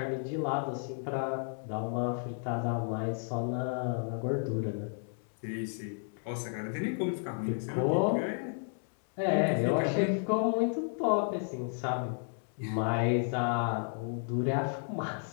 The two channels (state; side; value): silent; right; 56 dB below the other